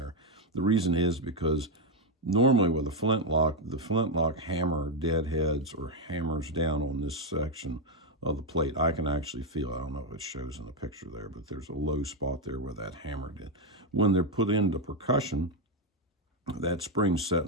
The reason is because normally with a flintlock, the flintlock hammer deadheads or hammers down on this section of the plate. I can actually feel, I don't know if it shows in the picture there, but there's a low spot there where that hammer did. When they're put into percussion, that spring's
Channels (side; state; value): both; normal; correlation 0.05